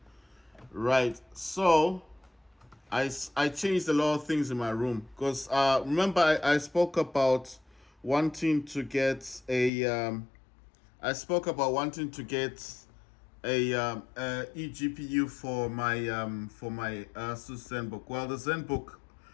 Right. So I changed a lot of things in my room because remember I spoke about wanting to get I spoke about wanting to get a eGPU for my Asus ZenBook. Well, the ZenBook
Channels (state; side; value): drops out; right; at 9.7 s